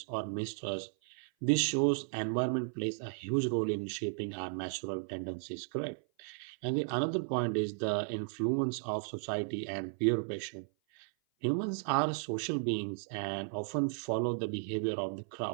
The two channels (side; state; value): left; silent; 55 dB below the other